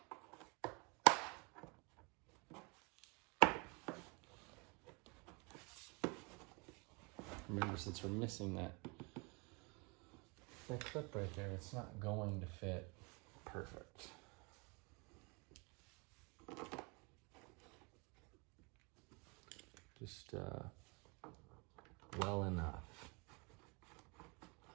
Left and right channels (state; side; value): quieter; left; 30.3 dB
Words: Remember, since we're missing that clip right there, it's not going to fit perfect. Just well enough.